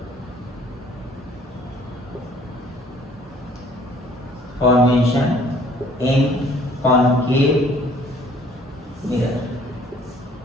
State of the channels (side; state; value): both; normal; correlation 0.57